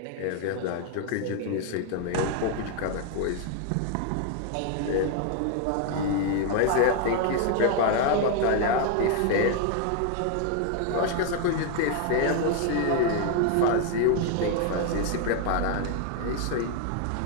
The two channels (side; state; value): both; different; correlation 0.00